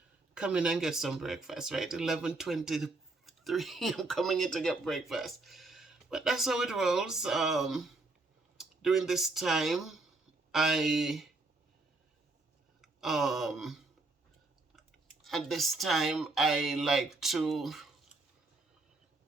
come in and get some breakfast, right? 11:23, I'm coming in to get breakfast. But that's how it rolls. During this time, I like to,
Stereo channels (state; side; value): quieter; left; 3.3 dB